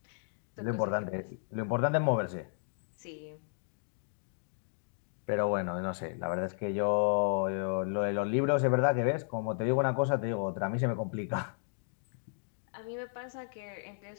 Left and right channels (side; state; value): right; silent; digital silence